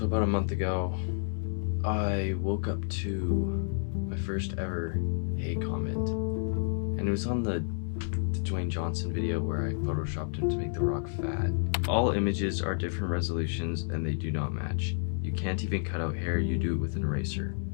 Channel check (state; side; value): silent; right; 58 dB below the other